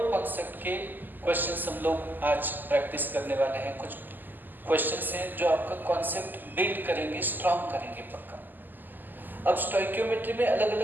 कॉन्सेप्ट के क्वेश्चंस हम लोग आज प्रैक्टिस करने वाले हैं। कुछ क्वेश्चंस हैं जो आपका कॉन्सेप्ट बिल्ड करेंगे, स्ट्रॉन्ग करेंगे पक्का। अब स्टोइकियोमेट्री में अलग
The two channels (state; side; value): late; left; 0.088 ms